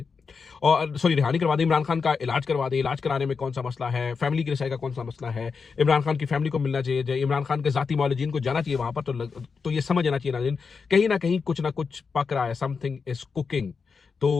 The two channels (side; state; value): right; quieter; 5.3 dB